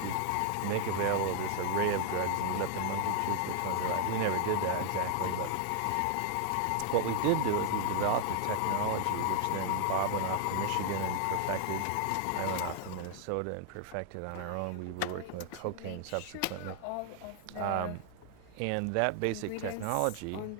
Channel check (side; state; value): both; different; correlation 0.00